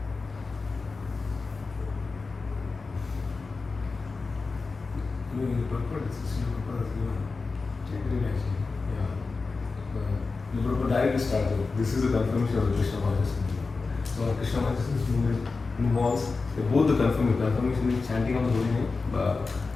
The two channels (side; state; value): right; quieter; 4.1 dB